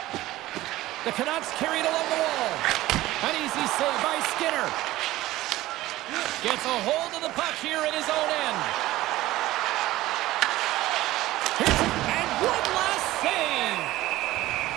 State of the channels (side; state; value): left; quieter; 16.6 dB